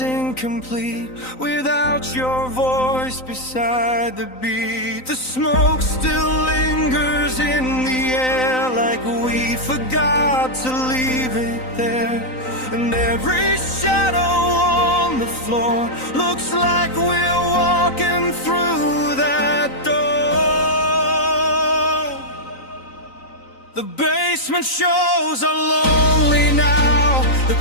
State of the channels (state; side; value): late; right; 3.9 ms